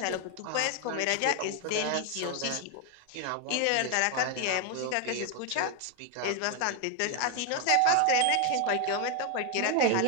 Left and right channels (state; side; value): different; both; correlation 0.01